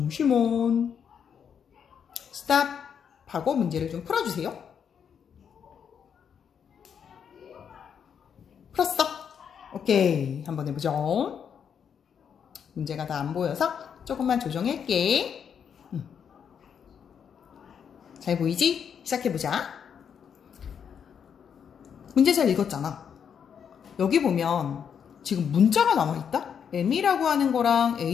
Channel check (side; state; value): right; quieter; 7.6 dB